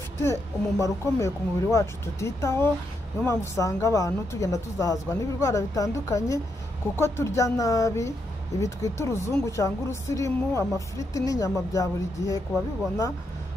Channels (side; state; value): both; normal; correlation 0.80